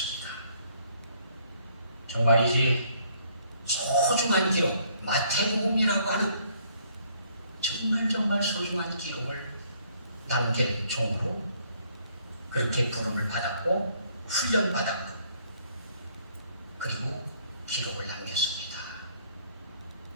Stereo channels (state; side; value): inverted; both; correlation -0.65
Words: 정말이지 소중한 기록, 마태복음이라고 하는 정말 소중한 기록을 남길 종으로 그렇게 부름을 받았고 훈련받았고 그리고 기록을 남겼습니다.